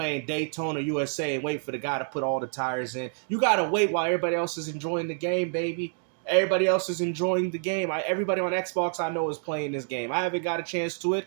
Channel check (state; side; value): silent; left; 60 dB below the other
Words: Daytona USA and wait for the guy to put all the tires in. You got to wait while everybody else is enjoying the game, baby. Everybody else is enjoying the game. Everybody on Xbox I know is playing this game. I haven't got a chance to it.